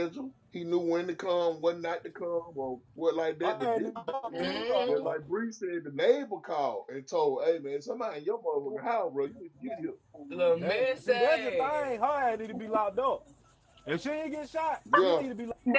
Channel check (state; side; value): identical; both; correlation 1.00